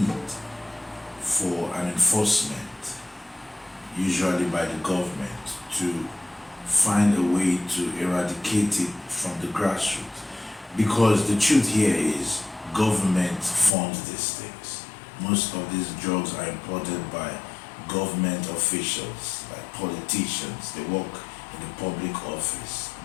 for an enforcement, usually by the government, to find a way to eradicate it from the grassroots. Because the truth here is government funds these things. Most of these drugs are imported by government officials, like politicians. They work in the public office,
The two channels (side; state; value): right; drops out; at 13.8 s